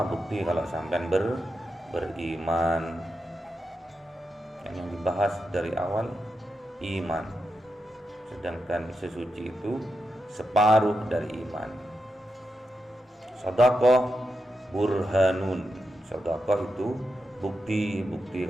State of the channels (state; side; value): normal; both; correlation 0.87